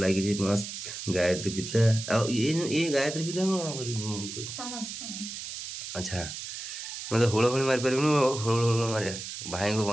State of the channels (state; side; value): noise; right; hiss, 8 dB below the sound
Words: मस्त गायत्री पिता ये गायत्री पिता अच्छा मैं तो हुड़ हुड़ी मारी पारि हुड़ मारे भाई को